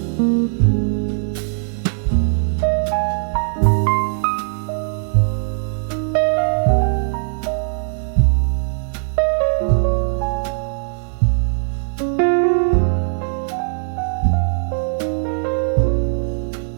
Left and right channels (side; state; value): left; silent; 66 dB below the other